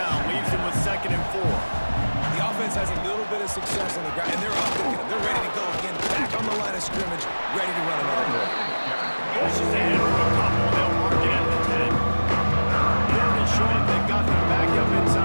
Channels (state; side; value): inverted; both; correlation -1.00